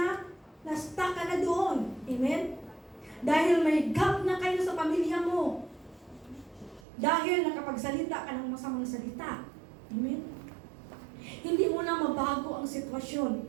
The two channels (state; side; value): drops out; left; at 6.9 s